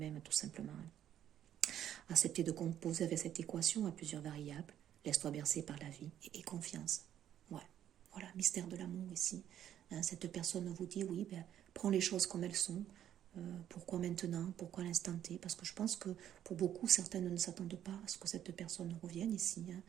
tout simplement. Accepter de composer avec cette équation à plusieurs variables, laisse-toi bercer par la vie et confiance. Ouais, voilà, mystère de l'amour ici. Cette personne vous dit, oui, prends les choses comme elles sont, Pourquoi maintenant? Pourquoi à l'instant T? Parce que je pense que pour beaucoup, certaines ne s'attendent pas à ce que cette personne revienne ici. Hein.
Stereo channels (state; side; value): quieter; left; 10.8 dB